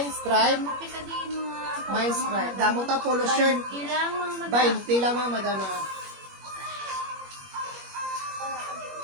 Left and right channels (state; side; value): late; left; 21 ms